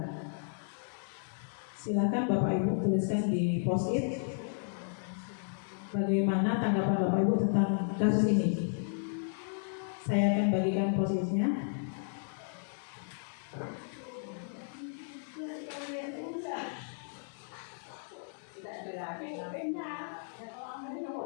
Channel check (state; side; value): silent; right; digital silence